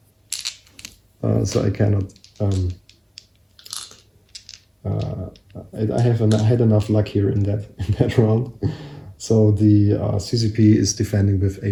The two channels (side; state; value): both; identical; correlation 1.00